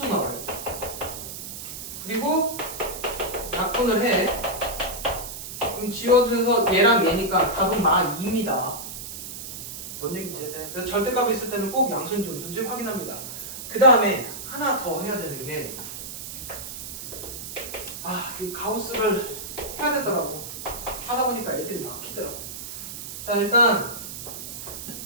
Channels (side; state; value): right; noise; hiss, 9 dB below the sound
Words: 나와야 돼. 그리고 약분을 해. 그럼 지워져서 얘랑 얘니까 답은 마 2입니다. 뭔 얘기인지 해야 그래서 절대값이 있을 때는 꼭 양수인지 음수인지 확인합니다. 그 다음에 하나 더 해야 되는 게 이 가우스를 해야 되더라고. 하다 보니까 애들이 막히더라고. 자, 일단